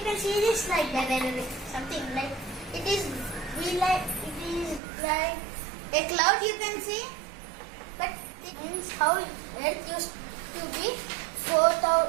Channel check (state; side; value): drops out; left; at 4.8 s